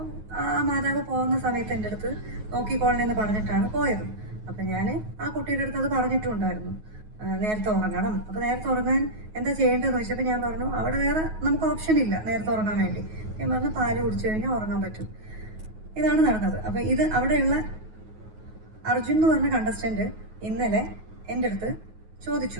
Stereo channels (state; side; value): late; left; 9.4 ms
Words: ആ മാതാവ് പോകുന്ന സമയത്ത് എൻ്റെ അടുത്ത് നോക്കിക്കോളണമെന്ന് പറഞ്ഞിട്ടാണ് പോയത്. അപ്പം ഞാൻ ആ കുട്ടിയുടെ അടുത്ത് അത് പറഞ്ഞിട്ടുണ്ടായിരുന്നു, നേരത്തെ ഉറങ്ങണം. അപ്പോൾ നേരത്തെ ഉറങ്ങാൻ എന്താ ചെയ്യേണ്ടതെന്ന് ചോദിച്ചപ്പോൾ ഞാൻ പറഞ്ഞു അവിടെ വേറെ നമുക്ക് ഓപ്ഷൻ ഇല്ല നേരത്തെ ഉറങ്ങാൻ വേണ്ടി. ഞാൻ പറഞ്ഞു പാല് കുടിച്ചു കഴിഞ്ഞാൽ ഉറങ്ങാൻ പറ്റും. ഇതാണ് നടന്നത്. അപ്പോൾ ഇത് അവിടെയുള്ള അർജുൻ എന്ന് പറഞ്ഞ കണ്ടസ്റ്റൻറ്റ് ഇന്നലെ എൻ്റെ അടുത്ത്